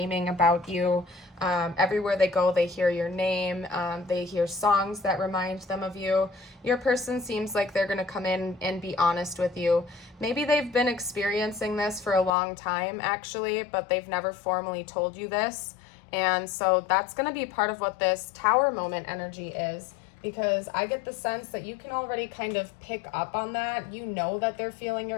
about you. Everywhere they go, they hear your name. They hear songs that remind them of you. Your person seems like they're going to come in and be honest with you. Maybe they've been experiencing this for a long time, actually, but they've never formally told you this. And so that's going to be part of what this tower moment energy is, because I get the sense that you can already kind of pick up on that. You know that they're feeling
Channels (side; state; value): right; drops out; at 12.3 s